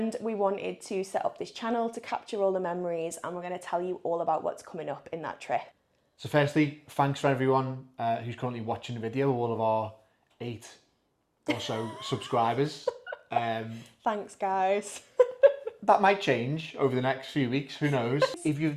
we wanted to set up this channel to capture all the memories, and we're going to tell you all about what's coming up in that trip. So firstly, thanks for everyone who's currently watching the video, all of our 8 or so subscribers. Thanks, guys. That might change over the next few weeks, who knows. If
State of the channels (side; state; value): both; identical; correlation 1.00